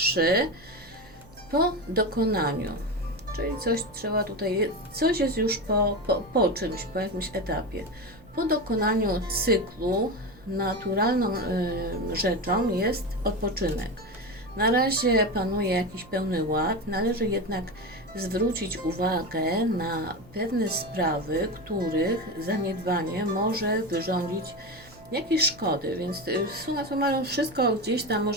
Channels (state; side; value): noise; right; hum, 23 dB below the sound